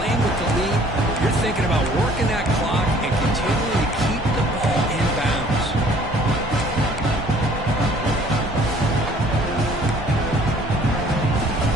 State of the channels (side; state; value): both; normal; correlation 0.56